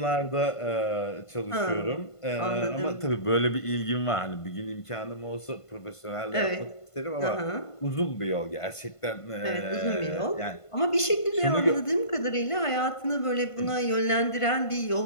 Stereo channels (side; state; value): right; late; 1.5 ms